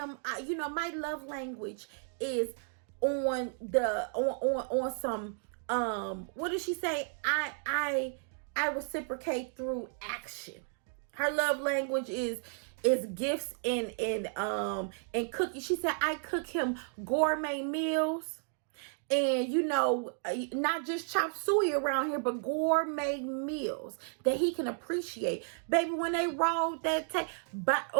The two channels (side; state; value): left; silent; 56 dB below the other